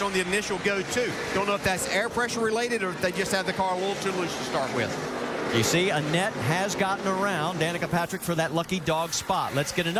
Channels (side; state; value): both; identical; correlation 1.00